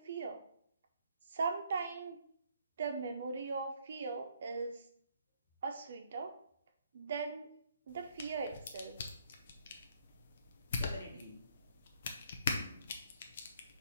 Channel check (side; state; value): both; inverted; correlation -0.68